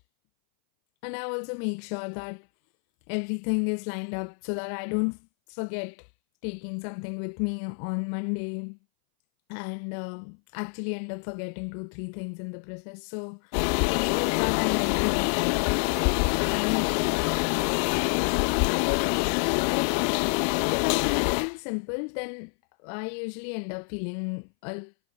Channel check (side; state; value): right; silent; 59 dB below the other